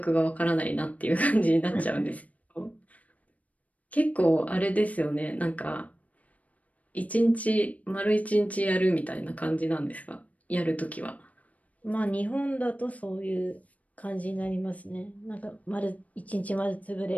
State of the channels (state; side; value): late; right; 0.069 ms